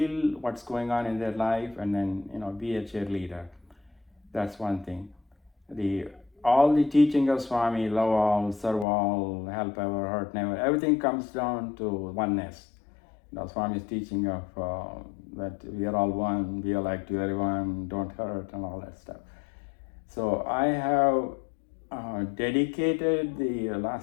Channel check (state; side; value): drops out; right; at 8.8 s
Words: what's going on in their life and then, be a cheerleader. That's one thing. All the teaching of Swami, love all, serve all, help ever, hurt never, everything comes down to oneness. Swami's teaching of that we are all one, be alike to everyone, don't hurt, and all that stuff. So I have dedicated the